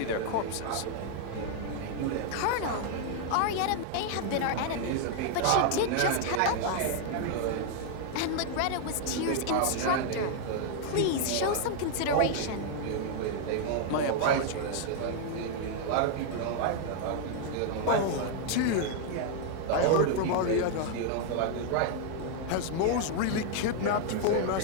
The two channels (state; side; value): different; both; correlation 0.00